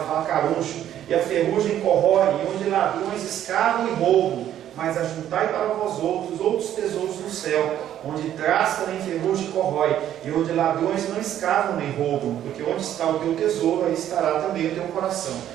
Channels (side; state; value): left; quieter; 11.2 dB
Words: fala caruncho, e a ferrugem corrói, e onde ladrões escavam e roubam. Mas ajuntai para vós outros tesouros no céu, onde traça nem ferrugem corrói, e onde ladrões não escavam nem roubam, porque onde está o teu tesouro, aí estará também o teu coração.